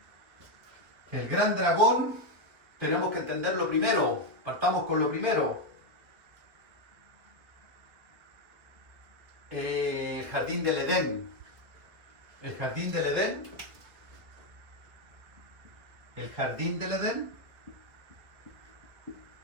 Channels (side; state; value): left; late; 2.0 ms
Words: El gran dragón, tenemos que entenderlo primero, partamos con lo primero. El jardín del Edén. El jardín del Edén. El jardín del Edén